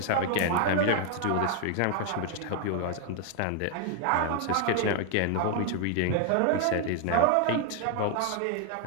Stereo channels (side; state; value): both; different; correlation 0.00